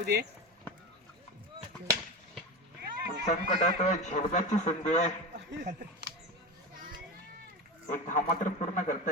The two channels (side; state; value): both; normal; correlation 0.23